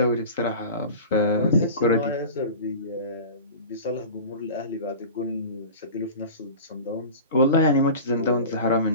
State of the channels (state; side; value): inverted; both; correlation -0.35